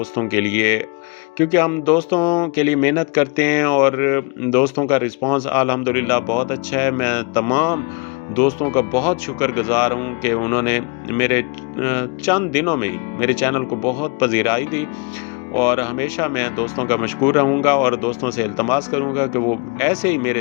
के लिए, क्योंकि हम दोस्तों के लिए मेहनत करते हैं और दोस्तों का रिस्पांस अल्हम्दुलिल्लाह बहुत अच्छा है। मैं तमाम दोस्तों का बहुत शुक्रगुज़ार हूँ कि उन्होंने मेरे चंद दिनों में ही मेरे चैनल को बहुत पज़ीराई दी। और हमेशा मैं दोस्तों का मशकूर रहूँगा और दोस्तों से इल्तमास करूँगा कि वो ऐसे ही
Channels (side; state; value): right; quieter; 31.6 dB